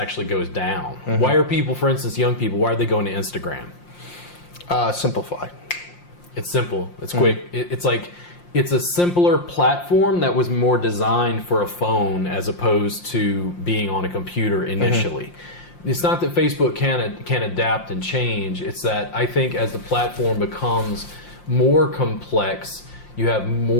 goes down. Why are people, for instance, young people, why are they going to Instagram? Simplify. It's simple. It's quick. It's like it's a simpler platform that was more designed for a phone as opposed to being on a computer initially. It's not that Facebook can adapt and change. It's that I think as the platform becomes more complex, you have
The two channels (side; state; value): right; late; 5.7 ms